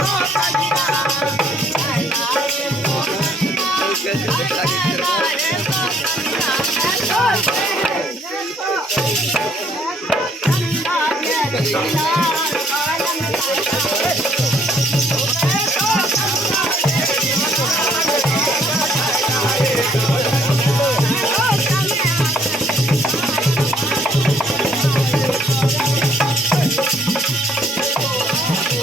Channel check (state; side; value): normal; both; correlation 0.64